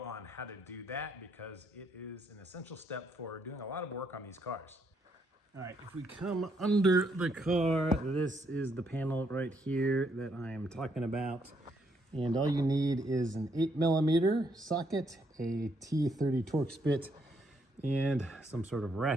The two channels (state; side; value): normal; both; correlation 0.74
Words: on how to do that because it is an essential step for doing a lot of work on these cars. All right, if we come under the car, this is the panel right here that I am talking about. And all you need is an 8mm socket, a T30 Torx bit, and some sort of